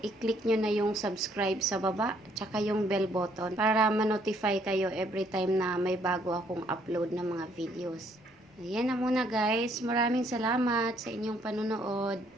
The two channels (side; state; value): both; normal; correlation 0.67